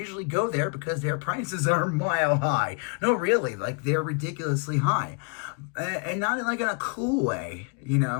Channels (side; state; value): right; quieter; 34.5 dB